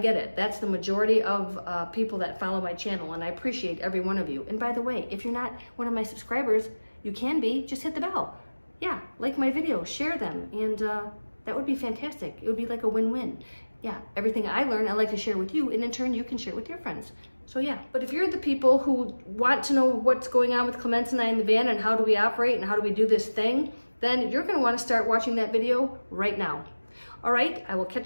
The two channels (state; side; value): inverted; both; correlation -1.00